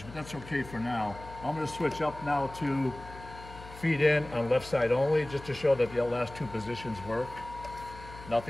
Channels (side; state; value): left; noise; hum, 16 dB below the sound